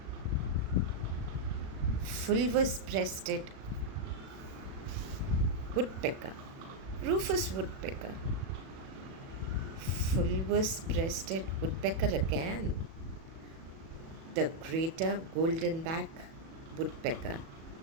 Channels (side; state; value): left; late; 37 ms